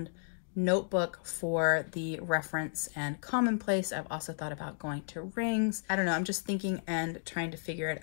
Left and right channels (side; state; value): right; silent; digital silence